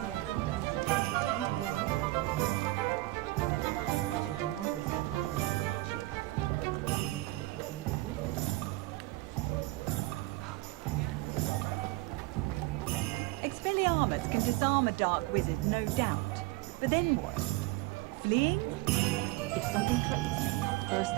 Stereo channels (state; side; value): quieter; left; 19.5 dB